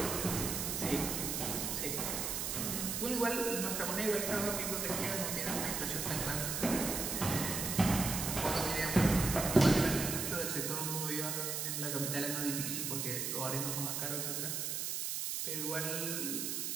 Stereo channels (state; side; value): noise; right; hiss, 1 dB below the sound